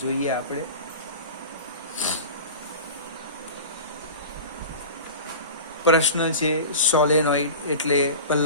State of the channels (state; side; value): inverted; both; correlation -0.33